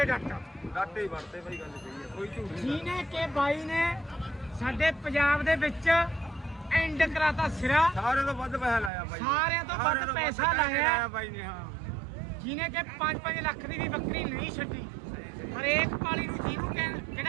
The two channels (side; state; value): left; drops out; at 8.9 s